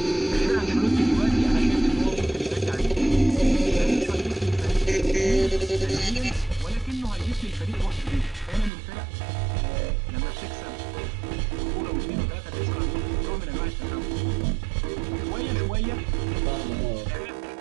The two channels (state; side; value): drops out; left; at 8.7 s